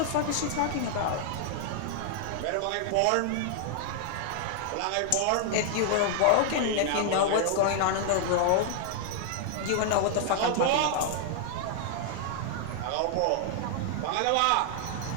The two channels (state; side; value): different; both; correlation 0.00